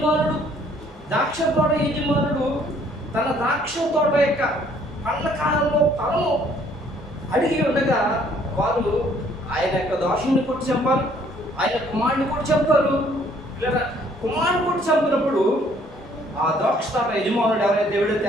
తన ద్రాక్ష తోట యొక్క పండ్ల కాలంలో ఫలము అడిగి ఉండగా వారు ఆయన యొక్క దోషుని కొట్టి చంపారు, ఆయన కుమారుని కొట్టి చంపారు. లేదా కుమారుని కొట్టి చంపినప్పుడు ఆ ద్రాక్ష తోట యజమానుడు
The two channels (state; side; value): normal; both; correlation 0.61